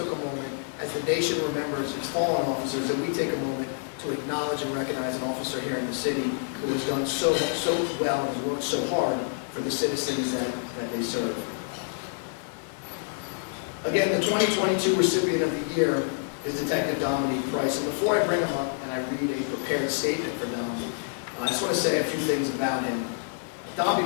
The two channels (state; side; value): silent; right; digital silence